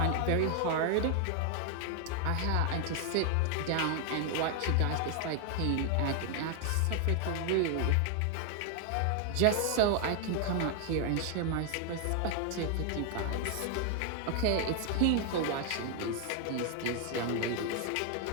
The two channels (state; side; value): different; both; correlation 0.00